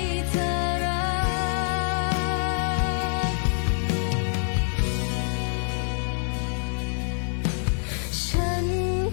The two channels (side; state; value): right; silent; digital silence